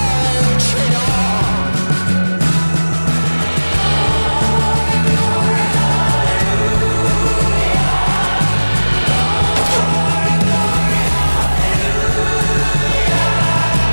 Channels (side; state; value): both; inverted; correlation -1.00